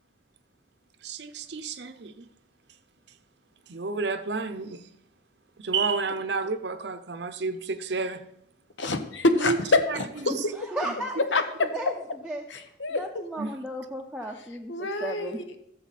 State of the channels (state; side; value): normal; both; correlation -0.03